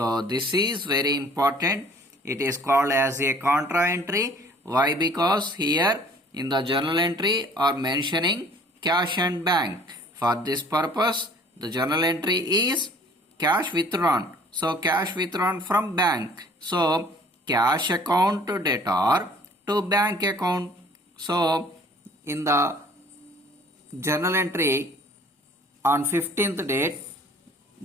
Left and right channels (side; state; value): both; normal; correlation 0.53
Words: this is very important. It is called as a contra entry. Why? Because here in the journal entry are mentioning cash and bank. For this purpose, the journal entry is cash withdrawn. So cash withdrawn from bank. So cash account to debtor to bank account. So in the journal entry on 15th date,